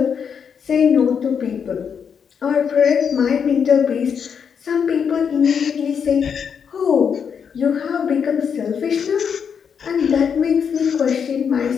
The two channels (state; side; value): quieter; right; 7.0 dB